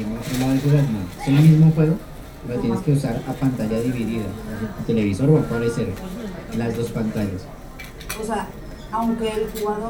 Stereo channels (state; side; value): identical; both; correlation 1.00